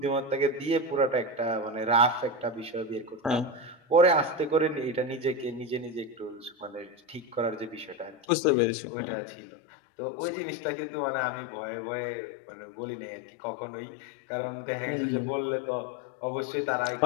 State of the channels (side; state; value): right; drops out; at 8.2 s